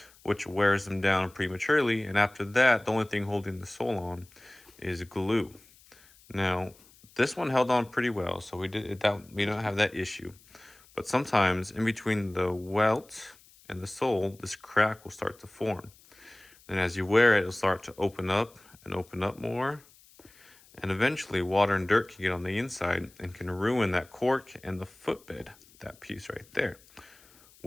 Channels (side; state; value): left; noise; hiss, 27 dB below the sound